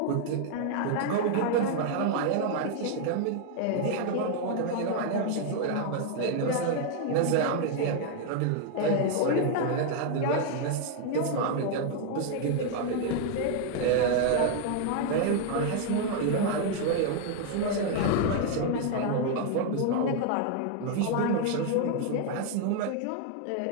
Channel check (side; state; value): both; different; correlation 0.00